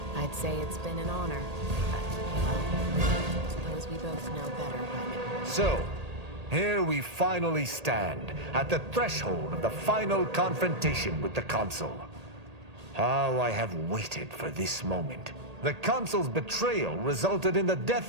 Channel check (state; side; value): late; left; 1.8 ms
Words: I'd say it's been an honor. both know better by now. So, here we finally stand, at the threshold of the final confrontation with the Consul. How I have waited for this moment. The Consul's betrayal resulted in the